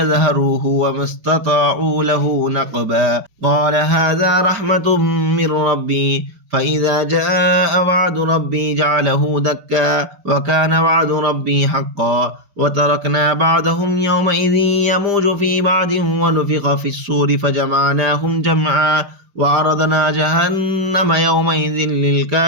وما استطاعوا له نقبا قال هذا رحمة من ربي فإذا جاء وعد ربي جعله دكا وكان وعد ربي حقا وتركنا بعضهم يومئذ يموج في بعض ونفخ في الصور فجمعناهم جمعا وعرضنا جهنم يومئذ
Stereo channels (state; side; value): late; left; 5.0 ms